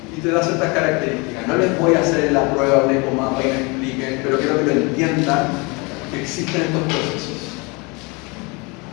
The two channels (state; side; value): quieter; right; 28.4 dB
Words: y te da ciertas características. No les voy a hacer la prueba un ecomapa y me expliquen, pero quiero que lo entiendan que existen estos procesos.